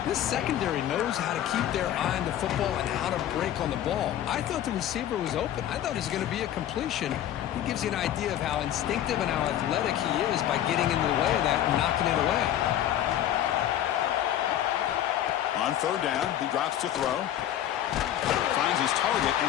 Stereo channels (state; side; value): quieter; right; 11.7 dB